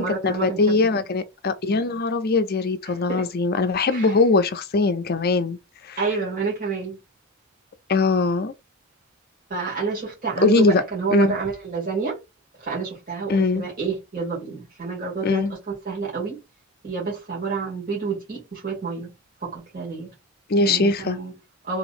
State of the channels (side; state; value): both; normal; correlation 0.20